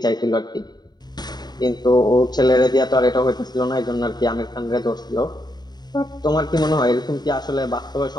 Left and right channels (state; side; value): late; right; 0.20 ms